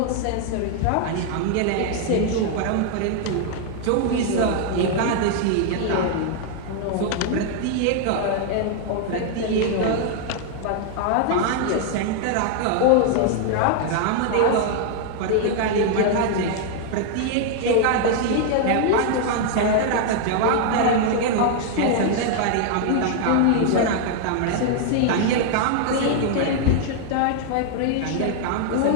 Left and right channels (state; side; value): different; both; correlation 0.00